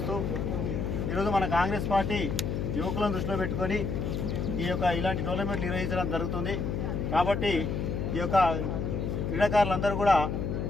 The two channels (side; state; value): left; noise; hum, 2 dB below the sound